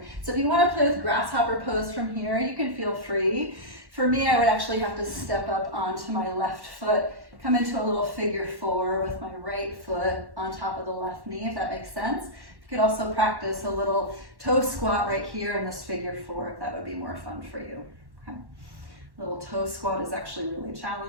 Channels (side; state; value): left; late; 1.1 ms